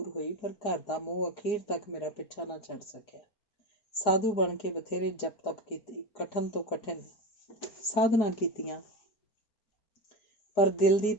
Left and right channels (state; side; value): late; right; 4.8 ms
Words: ਹੋਈ। ਪਰ ਘਰ ਦਾ ਮੋਹ ਅਖੀਰ ਤੱਕ ਮੇਰਾ ਪਿੱਛਾ ਨਾ ਛੱਡ ਸਕਿਆ। ਸਾਧੂ ਬਣ ਕੇ ਬਥੇਰੇ ਜਪ ਤਪ ਕੀਤੀ, ਕਠਨ ਤੋਂ ਕਠਿਨ ਸਾਧਨਾ ਕੀਤੀਆਂ, ਪਰ ਦਿਲ ਦੀ